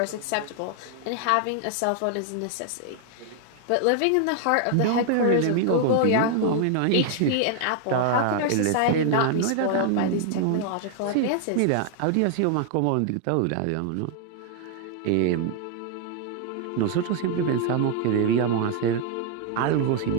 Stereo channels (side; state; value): both; different; correlation 0.00